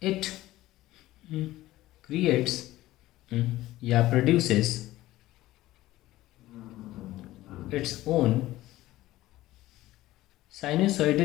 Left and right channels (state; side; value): quieter; right; 16.3 dB